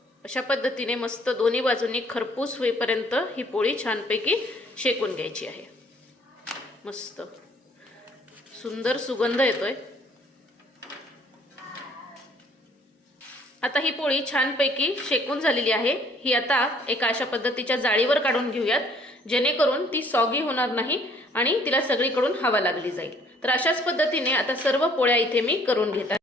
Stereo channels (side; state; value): both; normal; correlation 0.60